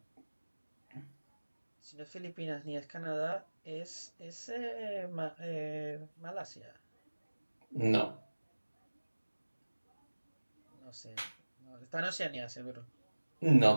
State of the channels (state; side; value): inverted; both; correlation -1.00